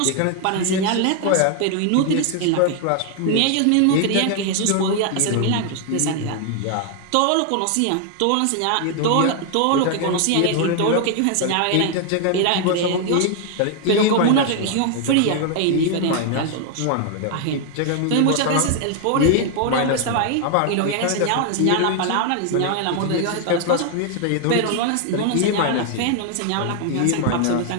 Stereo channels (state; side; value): different; both; correlation 0.00